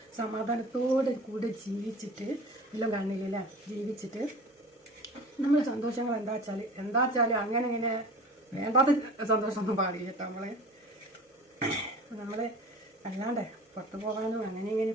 സമാധാനത്തോടെ കൂടെ ജീവിച്ചിട്ട് എല്ലാം കാണില്ലല്ലേ, ജീവിച്ചിട്ട് നമ്മളെ സന്തോഷങ്ങൾ എന്താ വെച്ചാൽ അങ്ങനെ ഇങ്ങനെ വേണ്ടാത്ത സന്തോഷമൊന്നും പാടില്ല കേട്ടോ. നമ്മളെ അല്ലാണ്ട് പുറത്ത് പോകാനോ അങ്ങനെ ഇങ്ങനെ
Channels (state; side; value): normal; both; correlation 0.39